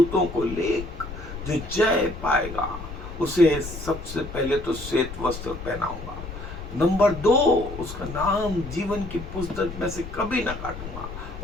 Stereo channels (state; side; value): noise; left; rumble, 10 dB below the sound